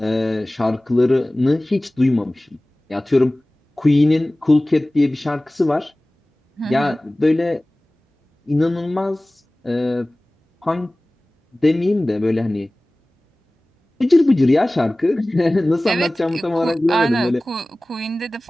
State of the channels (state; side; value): normal; both; correlation 0.98